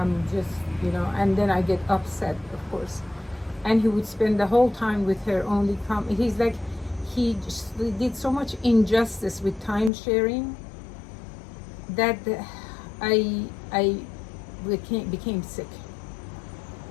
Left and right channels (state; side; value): drops out; right; at 9.9 s